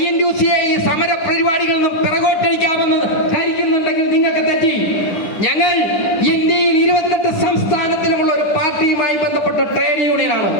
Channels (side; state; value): right; late; 10 ms